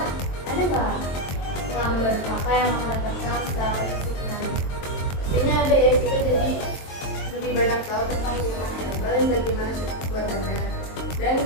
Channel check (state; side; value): late; right; 22 ms